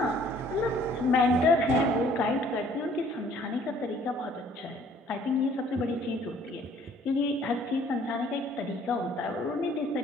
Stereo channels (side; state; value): both; normal; correlation 0.58